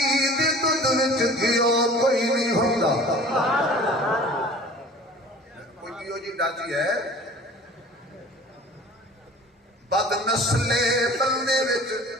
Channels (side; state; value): both; normal; correlation 0.45